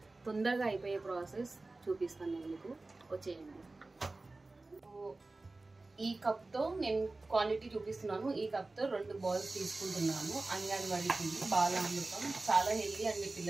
తొందరగా అయిపోయే ప్రాసెస్ చూపిస్తాను నేను మీకు. వచ్చేయండి. ఈ కప్తో నేను క్వాంటిటీ చూపిస్తున్నాను. ఈ కప్తో 2 బౌల్స్ తీసుకుంటున్నాను. అంగన్వాడీకి బాలామృతం చాలా హెల్దీ అండి,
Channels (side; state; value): left; quieter; 3.2 dB